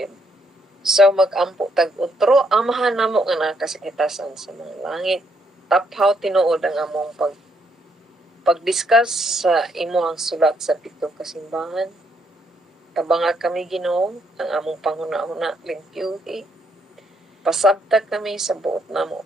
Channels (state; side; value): normal; both; correlation 0.73